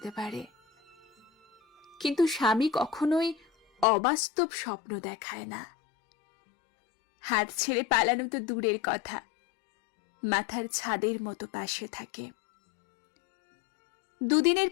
পারে, কিন্তু স্বামী কখনোই অবাস্তব স্বপ্ন দেখায় না। হাত ছেড়ে পালানো তো দূরের কথা, মাথার ছাদের মতো পাশে থাকে। দুদিনের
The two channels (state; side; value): drops out; right; at 3.9 s